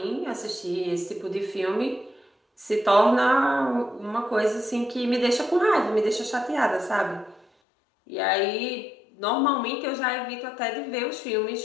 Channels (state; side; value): drops out; right; at 7.5 s